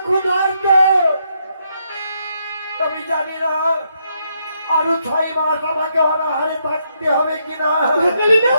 ক্ষুধার্ত, আমি জানি না আরো 6 মাস আমাকে অনাহারে থাকতে হবে কিনা।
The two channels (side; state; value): both; inverted; correlation -0.77